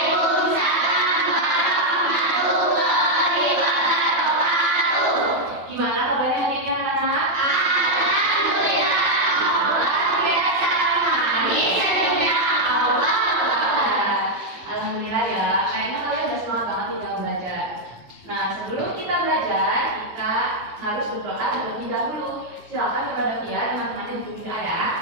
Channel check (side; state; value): left; late; 9.1 ms